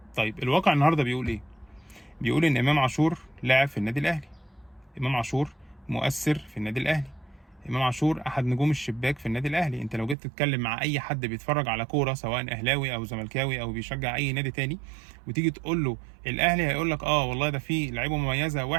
طيب الواقع النهارده بيقول ايه؟ بيقول ان امام عاشور لاعب في النادي الاهلي، امام عاشور مؤثر في النادي الاهلي، امام عاشور احد نجوم الشباك في النادي الاهلي. انت لو جيت تتكلم مع اي حد بيتفرج على كوره سواء اهلاوي او زملكاوي او بيشجع اي نادي تاني، وتيجي تقول له الاهلي، هيقول لك اه والله ده فيه لعيبه مميزه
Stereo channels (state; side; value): drops out; left; at 10.2 s